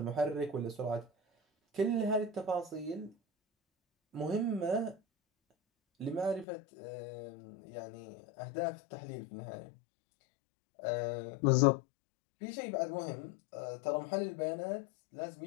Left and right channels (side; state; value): right; drops out; at 6.5 s